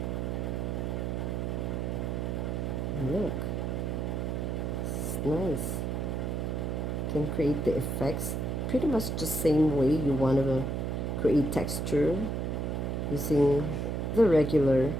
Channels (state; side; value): noise; right; hum, 1 dB below the sound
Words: Look, it's nice. Can create the effects pretty much the same way you want to create texture using the regular